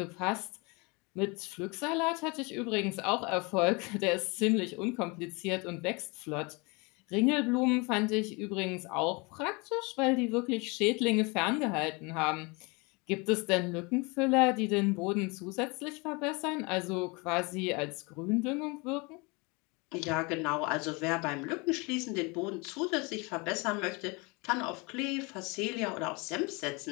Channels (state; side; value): quieter; right; 28.2 dB